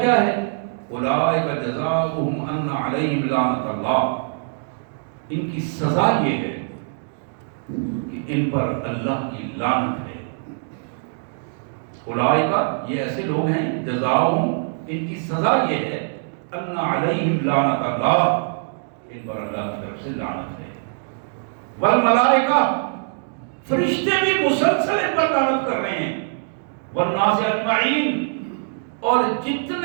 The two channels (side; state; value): left; silent; digital silence